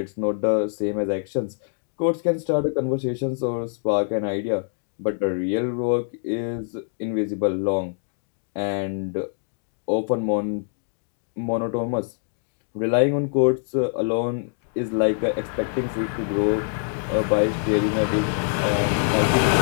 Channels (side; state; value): right; silent; digital silence